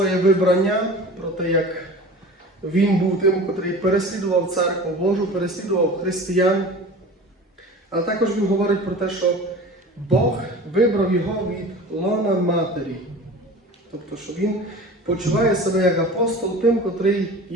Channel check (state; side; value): normal; both; correlation 0.38